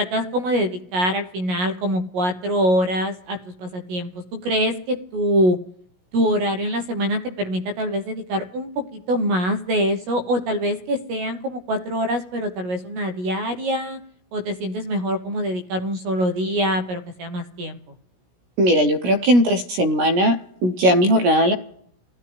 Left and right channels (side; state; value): left; late; 17 ms